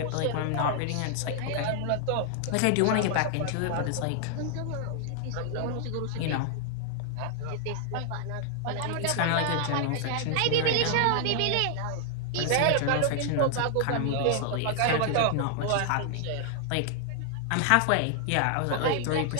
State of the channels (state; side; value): different; both; correlation 0.00